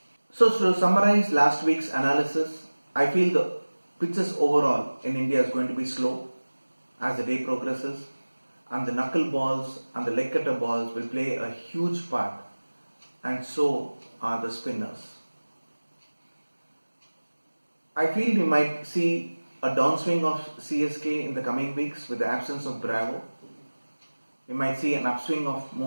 So to summarize last week's analysis, I feel the pitches overall in India is going to be slow as the day progresses, and the knuckle balls and the leg cutter balls will play a huge part, and so are the spinners. I feel we might see a downswing of CSK in the coming weeks with the absence of Bravo. We might see an upswing of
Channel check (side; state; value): both; inverted; correlation -1.00